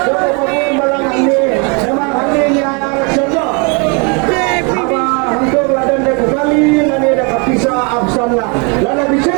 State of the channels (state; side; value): quieter; left; 33.7 dB